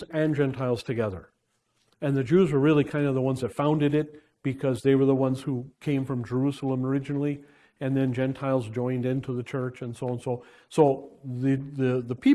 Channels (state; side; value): identical; both; correlation 1.00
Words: and Gentiles together. And the Jews were really kind of the ones that founded it because they were the ones who came from Jerusalem originally, and then Gentiles joined into the church and so on. So the